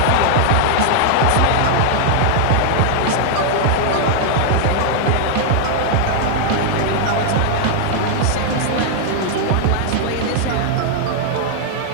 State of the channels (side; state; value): both; different; correlation -0.01